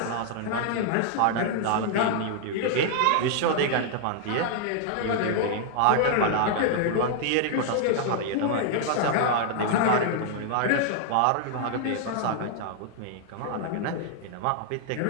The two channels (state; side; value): different; both; correlation -0.01